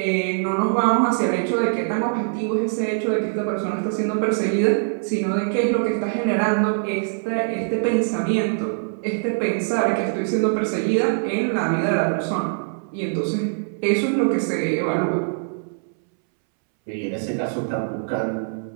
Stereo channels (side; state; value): left; silent; 64 dB below the other